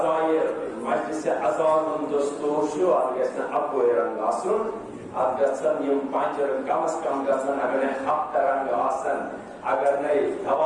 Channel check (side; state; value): both; identical; correlation 1.00